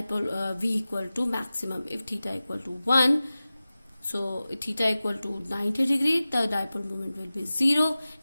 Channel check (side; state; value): both; inverted; correlation -0.96